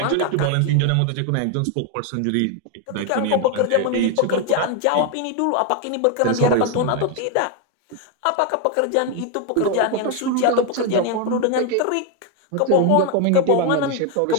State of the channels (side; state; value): both; different; correlation 0.01